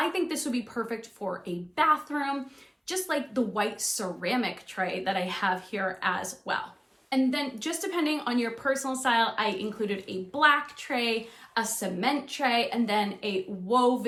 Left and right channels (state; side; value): identical; both; correlation 1.00